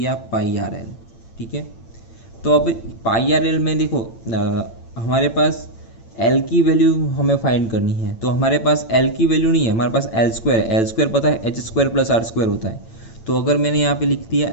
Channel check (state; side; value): late; right; 8.9 ms